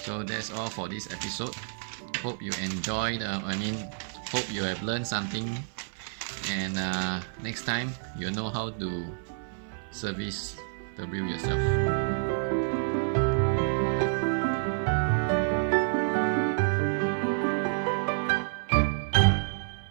So that's all for this episode. Hope you enjoyed, hope you have learned something, and next time you'll know how to service the reel yourself.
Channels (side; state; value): left; silent; 56 dB below the other